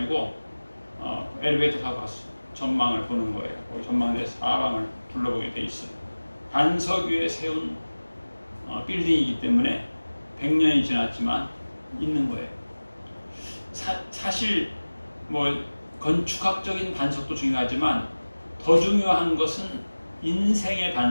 엘리베이터 타고 갔어. 전망을 보는 거예요. 전망대 사방을 둘러보게 돼 있어요. 반석 위에 세운 빌딩이기 때문에 100년이 지났지만 있는 거예요. 사실 뭐 건축학적인 반석도 중요하지만 더 중요한 것은 인생의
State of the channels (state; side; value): inverted; both; correlation -1.00